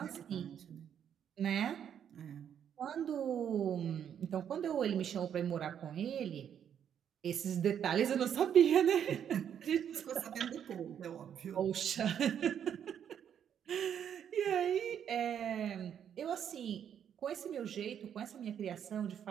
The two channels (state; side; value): quieter; left; 8.9 dB